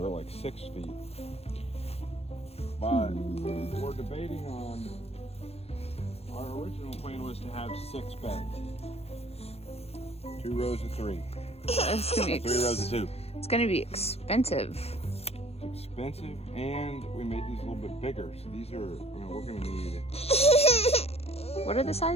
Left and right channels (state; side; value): late; right; 0.29 ms